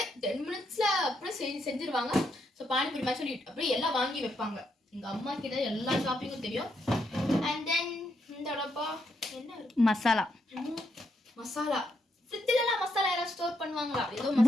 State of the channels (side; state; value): both; normal; correlation 0.78